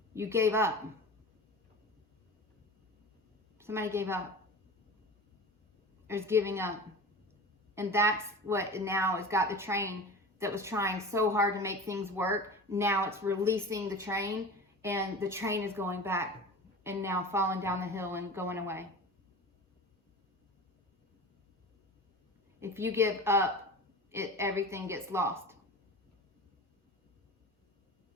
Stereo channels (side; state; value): both; normal; correlation 0.34